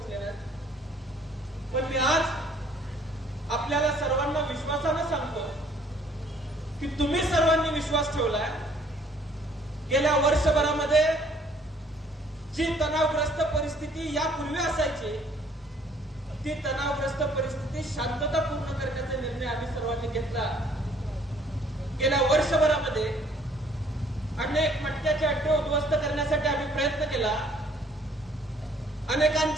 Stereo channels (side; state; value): both; normal; correlation 0.60